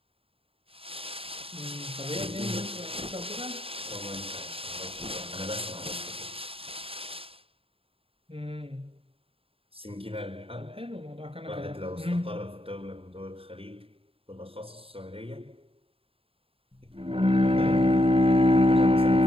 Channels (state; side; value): late; left; 0.27 ms